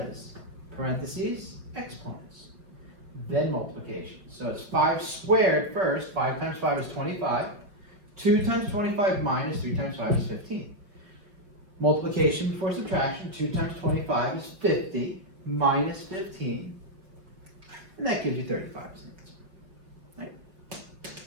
parentheses, exponents. Then multiplication. So it's 5 squared first. 5 times 5 is 25. 2 times 25 minus 3 times 5 is 15. Multiplication before subtraction. 2 times 25 is 50 minus 15. And that gives you 35 as an answer. Right?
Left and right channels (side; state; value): left; late; 4.9 ms